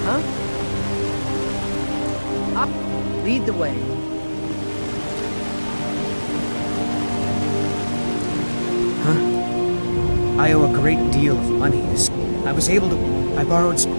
Huh? Up. Lead the way. Huh? I owe a great deal of money to... I was able to... I borrowed...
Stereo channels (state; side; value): inverted; both; correlation -1.00